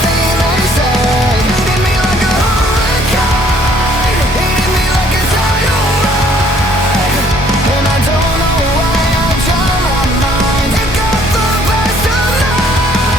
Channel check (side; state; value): both; normal; correlation 0.61